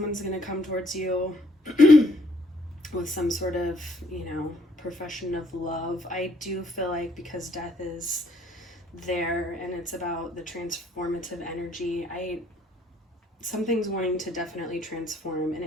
going to come towards you with some sort of, profession of love. I do feel like because death is there and it's about the transformative energy, something's wanting to definitely transform, and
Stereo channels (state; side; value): normal; both; correlation 0.66